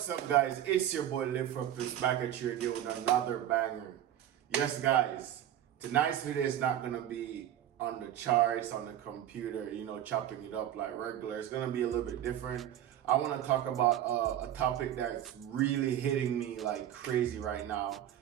up, guys? It's your boy Live for Peace back at you again with another banger. Yes, guys, tonight's video is not gonna be on the charts, on the computer, chopping it up like regular. It's gonna be a little bit different. I want to talk about a topic that's really hitting me like crazy right now.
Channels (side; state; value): left; quieter; 11.4 dB